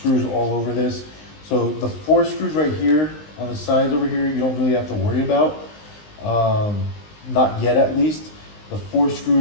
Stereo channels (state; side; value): late; right; 19 ms